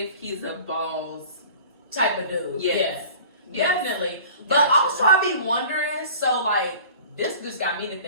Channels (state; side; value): inverted; both; correlation -0.44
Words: he's a balls Type of dude. Yes. Yeah. Yes. Definitely. But Gotcha. also I be wondering, so like this just got me to